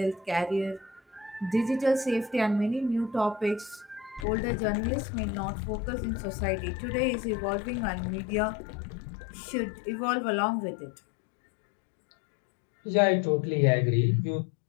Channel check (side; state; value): right; drops out; at 4.2 s